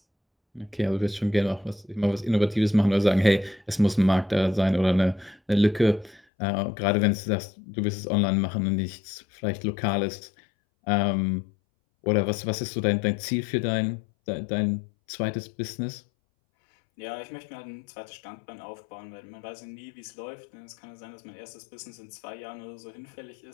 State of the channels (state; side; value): drops out; right; at 6.2 s